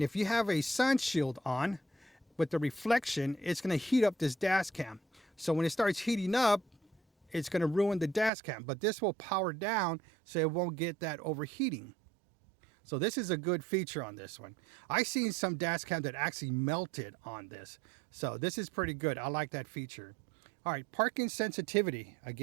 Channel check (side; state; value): left; drops out; at 8.3 s